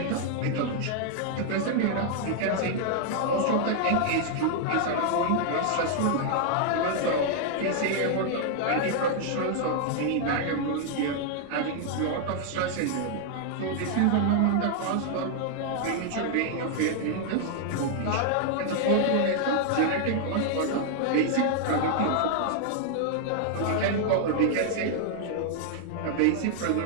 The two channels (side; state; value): both; different; correlation 0.00